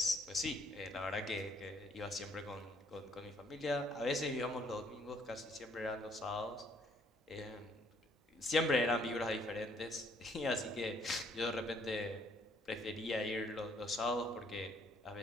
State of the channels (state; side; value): normal; both; correlation 0.65